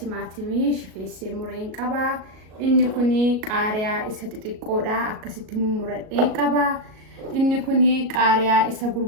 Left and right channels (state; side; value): late; left; 37 ms